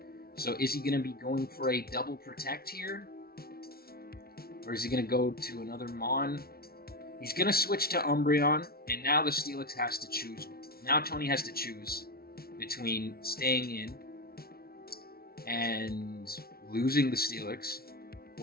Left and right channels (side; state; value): right; late; 0.44 ms